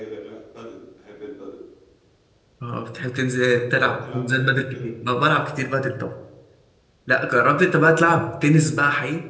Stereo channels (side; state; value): both; identical; correlation 1.00